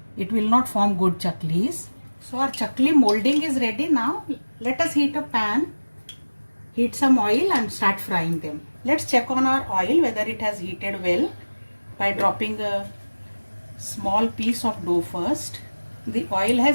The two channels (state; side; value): inverted; both; correlation -1.00